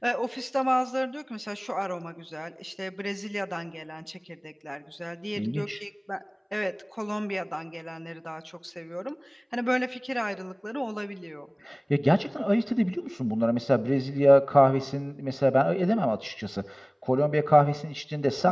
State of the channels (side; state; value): both; identical; correlation 1.00